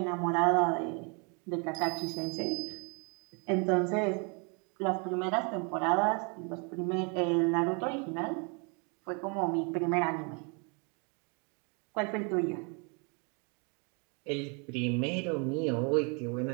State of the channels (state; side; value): quieter; left; 34.9 dB